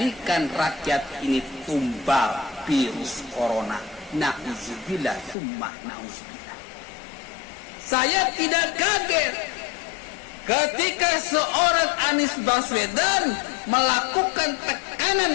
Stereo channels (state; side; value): drops out; right; at 5.4 s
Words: rakyat ini tumbal virus corona. Na'udzubillah, summa na'udzubillah. Saya tidak kaget ketika seorang Anies Baswedan melakukan tekanan